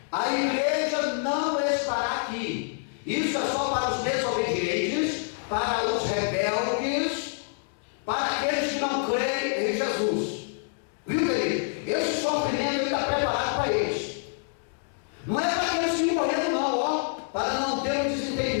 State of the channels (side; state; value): right; silent; 60 dB below the other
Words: a igreja não estará aqui. Isso é só para os desobedientes, para os rebeldes, para aqueles que não creem em Jesus. Viu, querido? Esse sofrimento está preparado para eles. Não é para aqueles que morreram não, ó, para não ter um